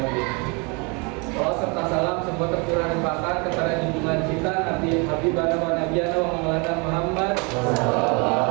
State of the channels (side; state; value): left; quieter; 31.4 dB